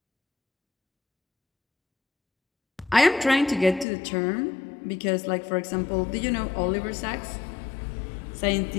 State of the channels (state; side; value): drops out; right; at 3.9 s